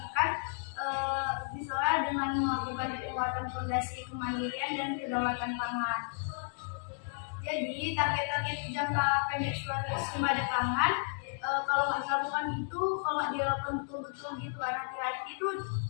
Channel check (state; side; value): silent; right; digital silence